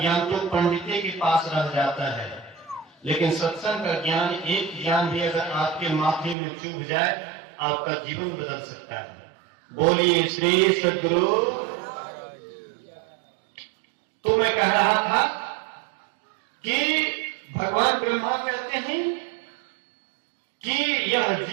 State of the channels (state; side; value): drops out; left; at 6.4 s